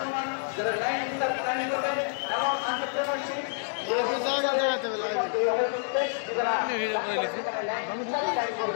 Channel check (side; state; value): right; silent; digital silence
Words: যারা লাইন প্ল্যানিং করবেন এবং এন্টারপ্রেনারশিপ